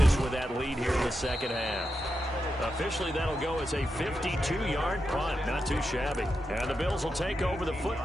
with that lead here in the 2nd half. Officially, that'll go as a 52-yard punt. Not too shabby. And the Bills will take over the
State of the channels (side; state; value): both; normal; correlation 0.87